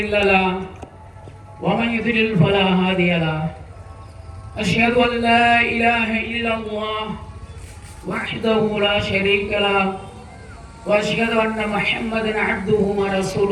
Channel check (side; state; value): both; identical; correlation 1.00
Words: له ومن يضلل فلا هادي له أشهد أن لا إله إلا الله وحده لا شريك له وأشهد أن محمدا عبده